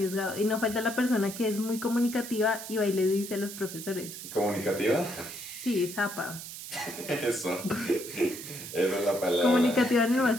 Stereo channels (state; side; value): noise; right; hiss, 10 dB below the sound